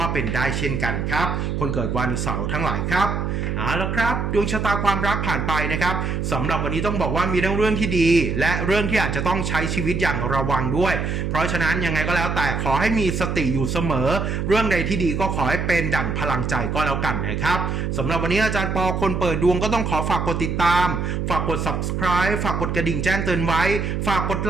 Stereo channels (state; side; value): noise; right; hum, 1 dB below the sound